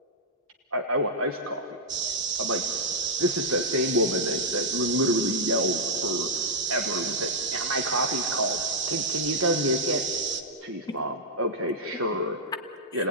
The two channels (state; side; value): normal; both; correlation -0.07